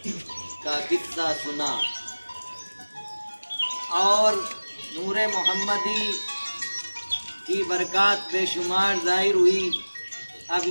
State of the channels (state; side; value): inverted; both; correlation -1.00